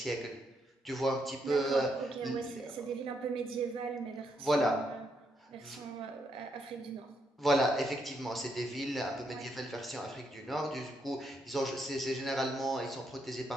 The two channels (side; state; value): both; normal; correlation 0.78